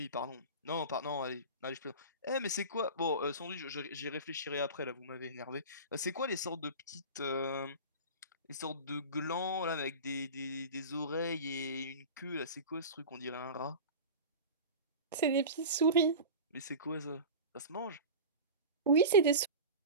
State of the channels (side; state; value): both; inverted; correlation -0.31